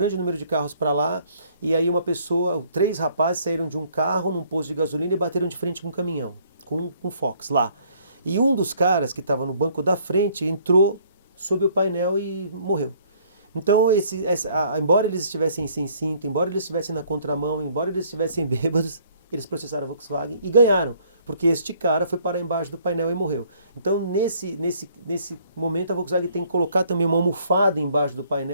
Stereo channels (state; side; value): inverted; both; correlation -0.61